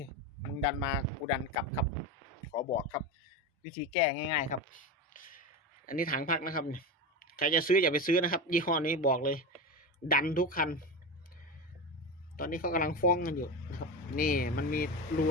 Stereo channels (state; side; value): normal; both; correlation 0.21